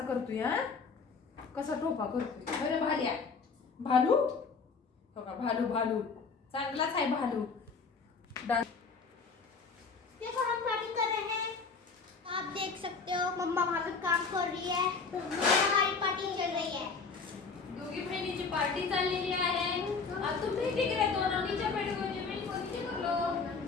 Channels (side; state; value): right; quieter; 4.9 dB